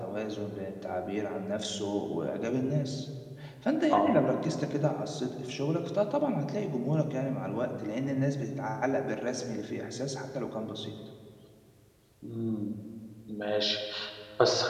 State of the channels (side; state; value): both; identical; correlation 1.00